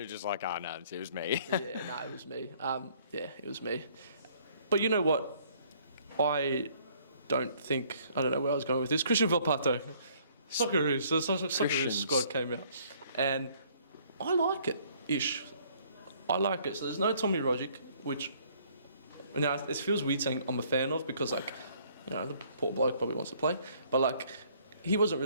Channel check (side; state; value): both; inverted; correlation -0.61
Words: was just like, no, it was me. It was me. It was me. But you know what? I don't know where I was going with this. Christian Valpato. Socceroos. The Socceroos squad came out. And I like it-ish. I like it. So there's no Tommy Rogic, which... Now, it feels weird saying I'm a fan of because, like, you know, the poor bloke probably wants to play. But, like, he wasn't